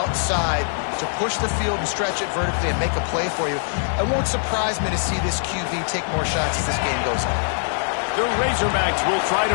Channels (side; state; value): right; silent; digital silence